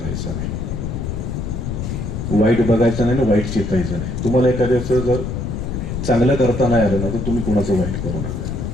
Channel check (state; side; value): noise; left; rumble, 4 dB below the sound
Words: नाही, वाईट बघायचं नाही ना वाईट चितायचं नाही. तुम्हाला एखाद्याचं जर चांगलं करता नाही आलं ना तर तुम्ही कुणाचं वाईट करू